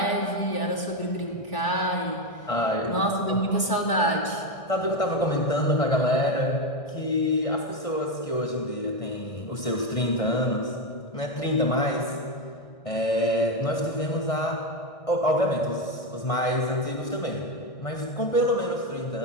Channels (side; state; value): right; late; 1.6 ms